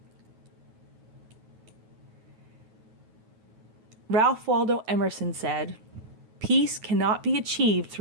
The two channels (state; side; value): late; left; 9.3 ms